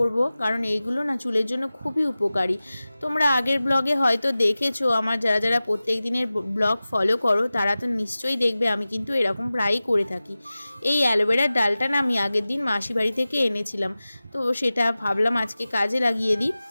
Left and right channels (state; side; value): inverted; both; correlation -0.97